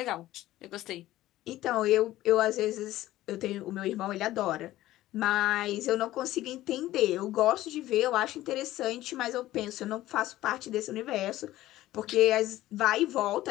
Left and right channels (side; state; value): right; quieter; 15.4 dB